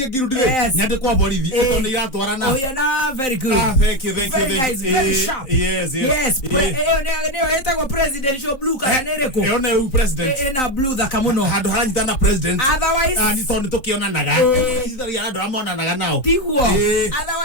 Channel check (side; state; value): right; late; 3.8 ms